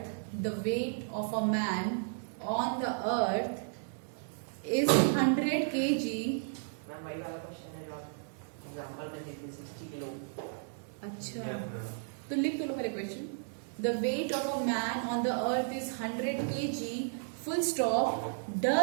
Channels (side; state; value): left; silent; digital silence